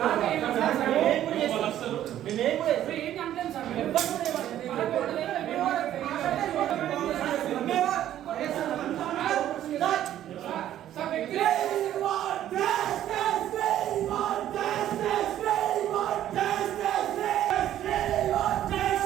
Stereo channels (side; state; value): left; quieter; 11.9 dB